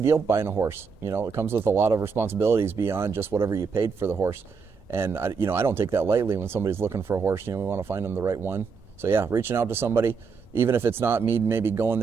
deal buying a horse. It comes with a lot of responsibilities beyond just whatever you paid for the horse. And I don't take that lightly when somebody's looking for a horse. We want to find them the right one. So yeah, reaching out to somebody, even if it's not me maybe going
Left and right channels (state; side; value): quieter; left; 5.4 dB